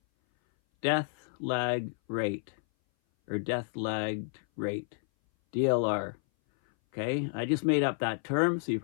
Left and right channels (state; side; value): silent; right; 57 dB below the other